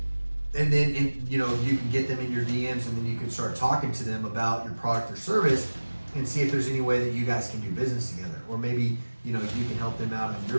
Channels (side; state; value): both; inverted; correlation -1.00